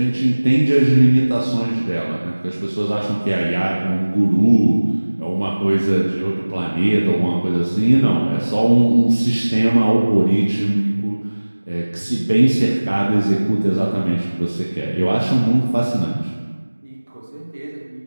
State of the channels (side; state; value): both; inverted; correlation -1.00